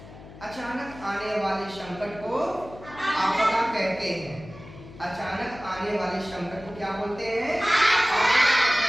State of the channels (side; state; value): left; noise; hum, 17 dB below the sound